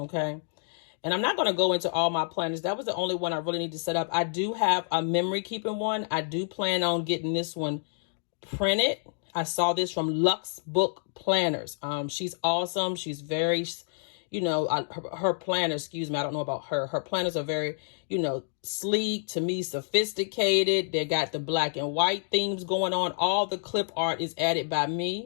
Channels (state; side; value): silent; right; digital silence